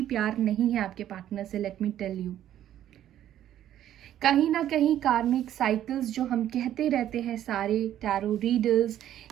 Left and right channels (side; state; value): left; quieter; 11.6 dB